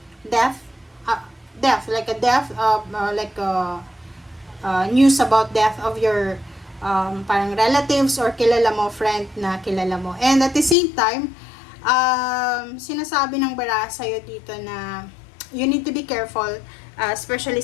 death, news about death of your parang relatives or kilala mo, friend na kilala mo. And at the same time, sinasabi ng baraha sa'yo dito na you need to be careful, especially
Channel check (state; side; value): drops out; right; at 10.8 s